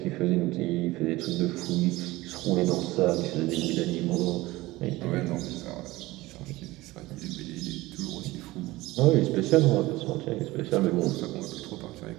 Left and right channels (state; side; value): quieter; left; 19.2 dB